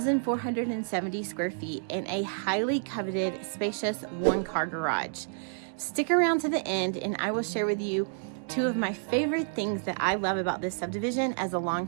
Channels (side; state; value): left; silent; digital silence